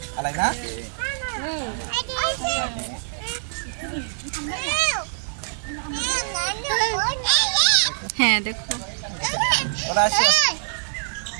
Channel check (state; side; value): silent; left; digital silence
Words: আলাই না? হ্যাঁ দেখো, ওরা আসে।